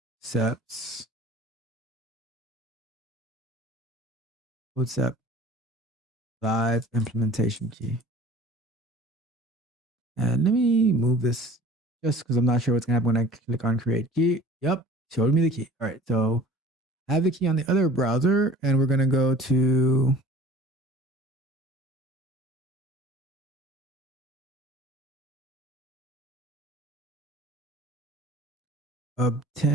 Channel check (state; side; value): normal; both; correlation 0.46